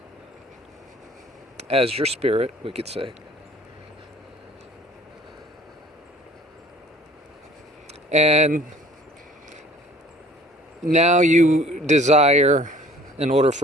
as your spirit, we could say. And now you desire, in order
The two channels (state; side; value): normal; both; correlation 0.52